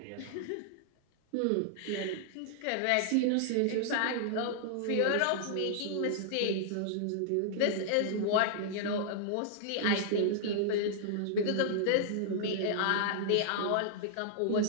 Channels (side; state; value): both; different; correlation -0.01